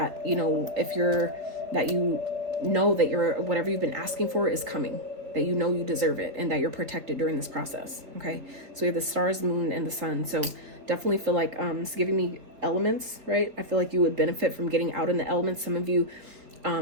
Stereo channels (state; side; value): late; left; 4.2 ms